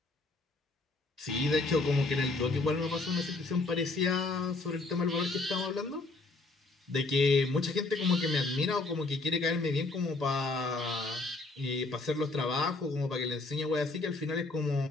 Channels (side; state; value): right; quieter; 3.3 dB